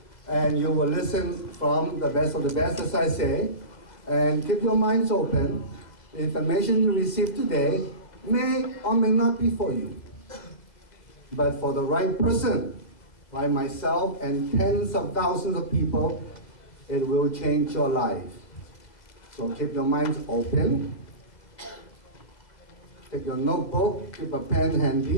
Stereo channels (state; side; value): late; right; 2.0 ms